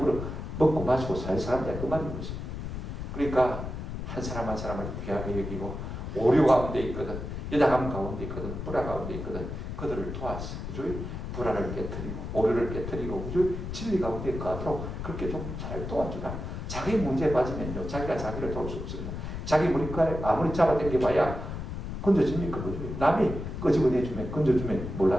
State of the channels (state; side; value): noise; left; rumble, 6 dB below the sound